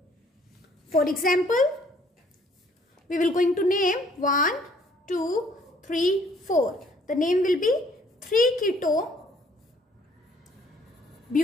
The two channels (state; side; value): normal; both; correlation 0.61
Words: For example, we will going to name 1, 2, 3, 4. The name will be